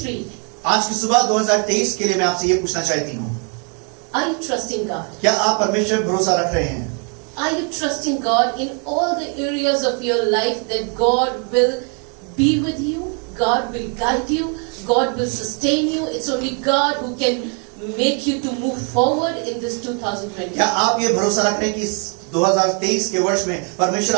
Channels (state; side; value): quieter; left; 38.1 dB